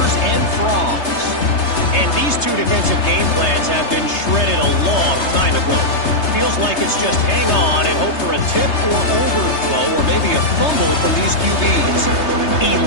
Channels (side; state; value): right; late; 3.3 ms